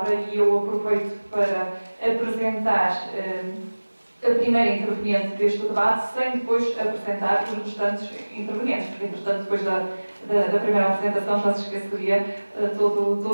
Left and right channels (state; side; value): inverted; both; correlation -1.00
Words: e eu aproveito para apresentar a primeira interveniente deste debate, sem depois apresentar os restantes intervenientes, porque, entretanto, depois da primeira apresentação já se esqueceria